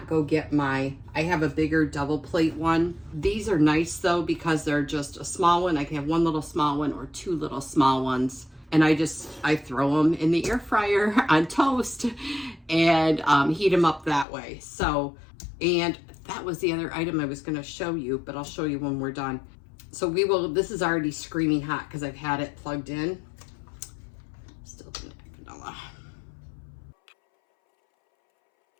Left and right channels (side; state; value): right; drops out; at 14.2 s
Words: go get I have a bigger double plate one. These are nice though because they're just a small one. I can have one little small one or 2 little small ones. And I throw them in the air fryer on toast and heat them up that way. So, and that was the other item I was going to show you, but I'll show you when we're done. So this is already screaming hot because I've had it plugged in. Still didn't have vanilla.